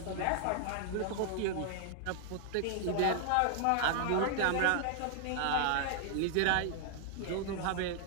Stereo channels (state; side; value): different; both; correlation 0.00